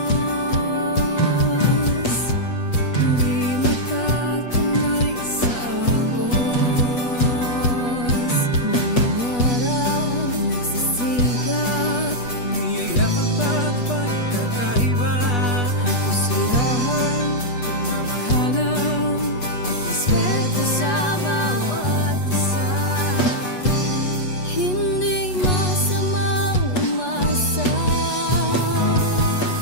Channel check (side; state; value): right; late; 8.2 ms